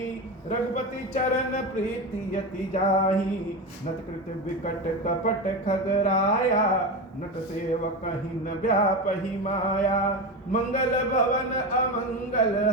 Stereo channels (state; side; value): normal; both; correlation 0.20